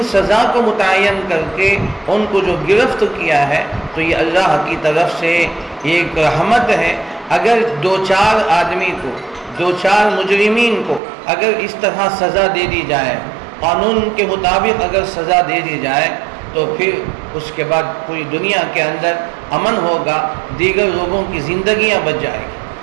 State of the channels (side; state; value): left; drops out; at 11.0 s